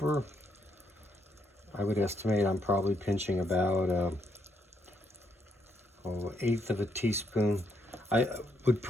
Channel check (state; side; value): normal; both; correlation 0.75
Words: I would estimate I'm probably pinching about 1/8 of a teaspoon. I would